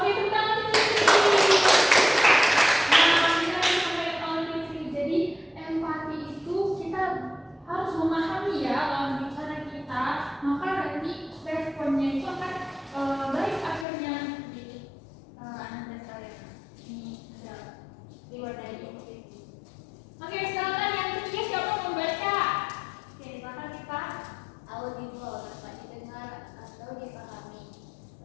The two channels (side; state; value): right; drops out; at 13.9 s